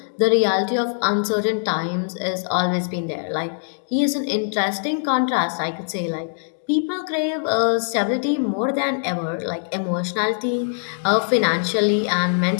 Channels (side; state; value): right; silent; digital silence